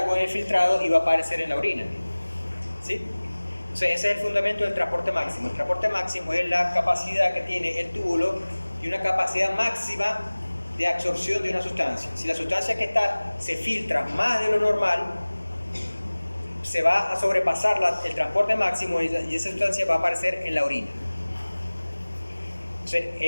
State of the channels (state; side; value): inverted; both; correlation -1.00